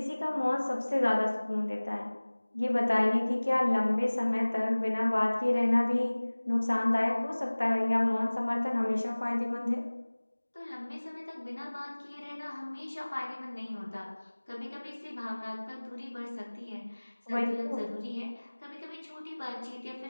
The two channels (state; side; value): inverted; both; correlation -1.00